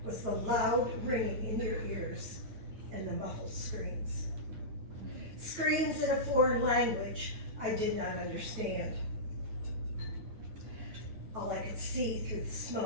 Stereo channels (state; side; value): late; left; 9.3 ms